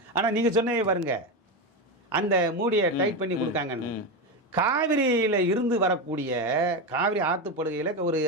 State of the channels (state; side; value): normal; both; correlation 0.15